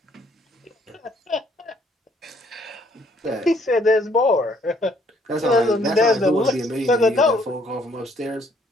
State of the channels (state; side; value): normal; both; correlation 0.65